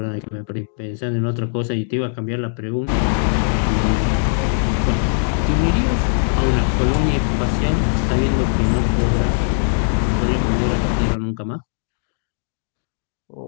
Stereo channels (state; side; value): silent; right; digital silence